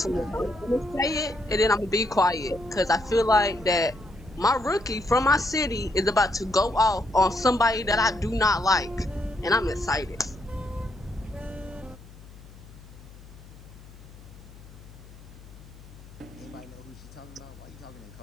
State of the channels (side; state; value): left; noise; hum, 19 dB below the sound